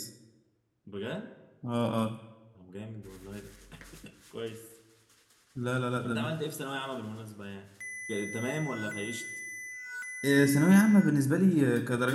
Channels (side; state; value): both; identical; correlation 1.00